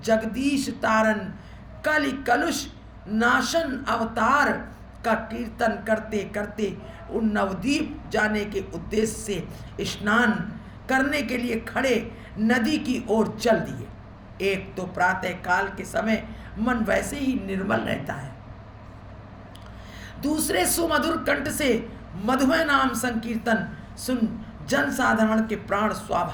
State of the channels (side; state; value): both; identical; correlation 1.00